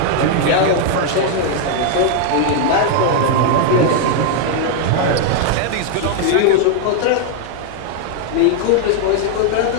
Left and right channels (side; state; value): both; different; correlation 0.00